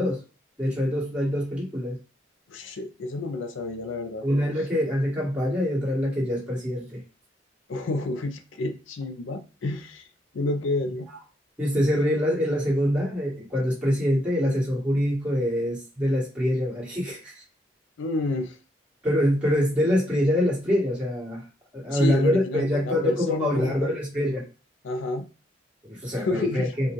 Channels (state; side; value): normal; both; correlation 0.75